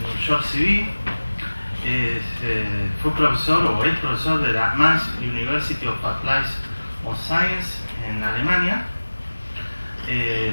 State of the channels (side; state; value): both; inverted; correlation -1.00